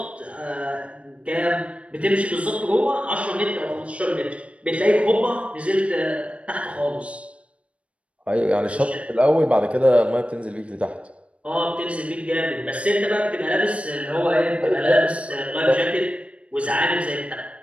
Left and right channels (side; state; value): left; late; 0.062 ms